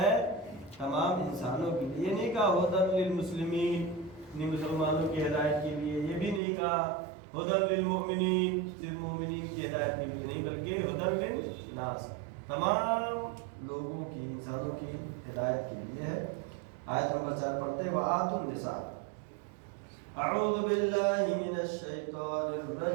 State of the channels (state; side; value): drops out; left; at 6.4 s